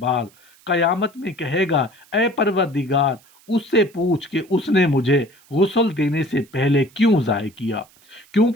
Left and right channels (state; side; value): noise; right; hiss, 29 dB below the sound